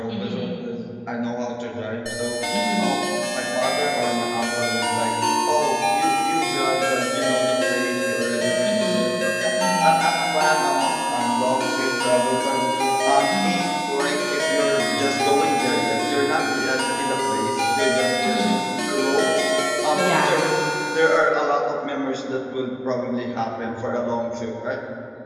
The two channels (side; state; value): both; identical; correlation 1.00